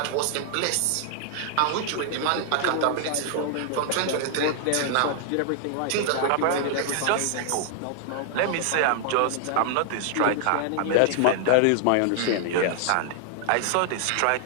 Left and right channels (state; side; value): different; both; correlation 0.00